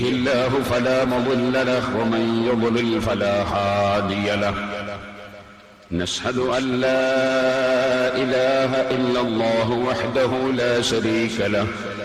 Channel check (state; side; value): identical; both; correlation 1.00